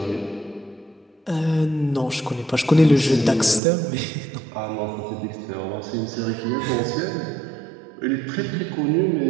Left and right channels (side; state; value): left; drops out; at 3.6 s